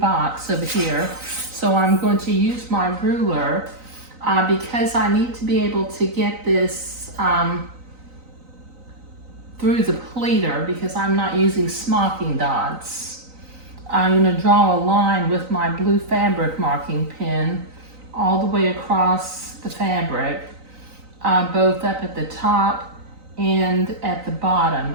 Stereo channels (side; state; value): left; late; 3.9 ms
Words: over here. So I'm going to use my ruler because I need to be able to get this through the pleater because I'm not using smocking dots. I'm going to draw a line with my blue fabric marking pen all the way across the fabric, both up at the top and at the